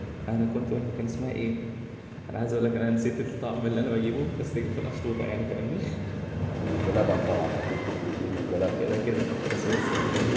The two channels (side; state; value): both; identical; correlation 1.00